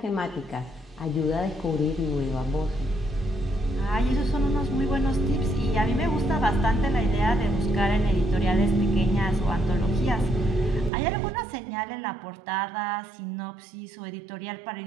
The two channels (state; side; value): drops out; left; at 10.9 s